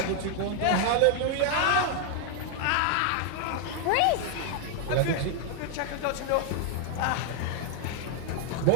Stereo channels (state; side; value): different; both; correlation 0.00